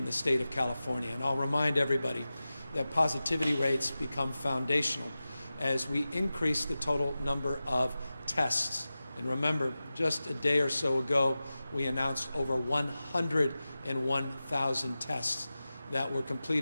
the state of California. And I'll remind everybody that positivity rates become foundational as we increase the total number of tests. And remember, just a day or so ago, we announced over 101,000 tests that were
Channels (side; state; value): both; inverted; correlation -0.95